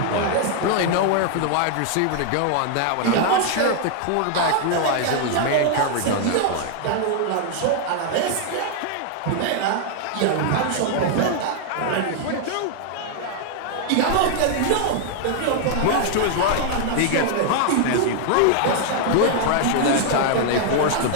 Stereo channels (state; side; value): different; both; correlation 0.00